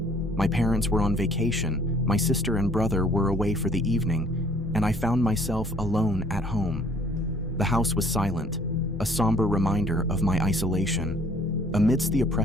My parents were on vacation, my sister and brother were away for the evening, and I found myself alone at home. The house was silent, a somber reminder of my isolation. Amidst the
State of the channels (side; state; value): both; normal; correlation 0.58